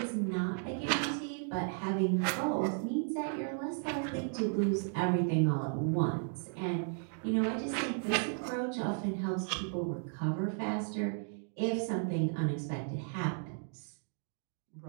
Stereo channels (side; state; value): left; silent; 55 dB below the other